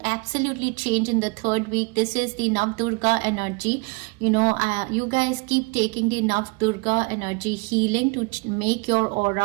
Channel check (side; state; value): left; quieter; 28.6 dB